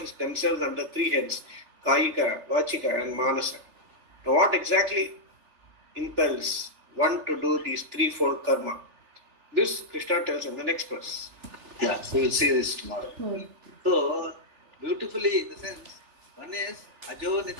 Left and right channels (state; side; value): late; left; 3.4 ms